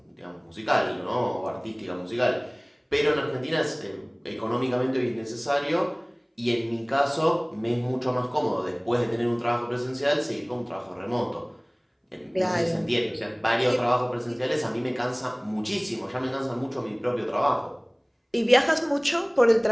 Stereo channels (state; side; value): identical; both; correlation 1.00